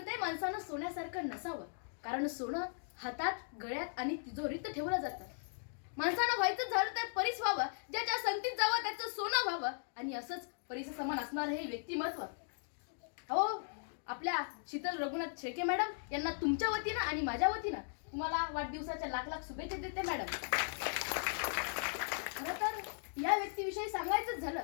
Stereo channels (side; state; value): right; silent; digital silence